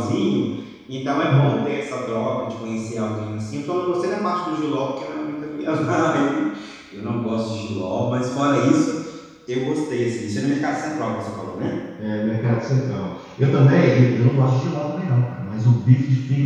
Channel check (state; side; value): identical; both; correlation 1.00